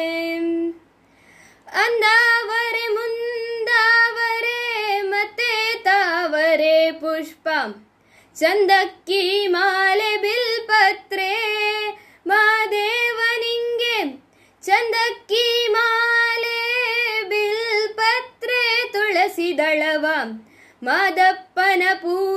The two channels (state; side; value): identical; both; correlation 1.00